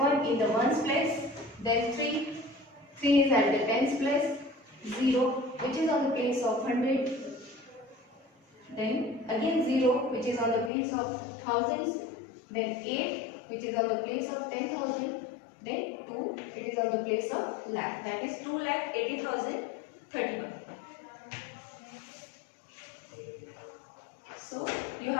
in the ones place. Then 3 is at the tens place. 0 which is on the place of 100. Then again 0 which is on the place of thousands. Then 8 which is on the place of 10,000. Then 2 it is on the place of lakh. That is 2,80,031. So you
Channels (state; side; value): drops out; right; at 10.7 s